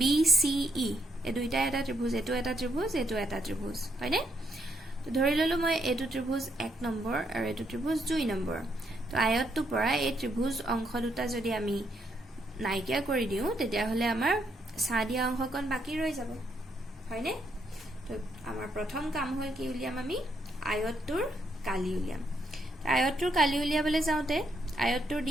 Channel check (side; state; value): both; normal; correlation 0.75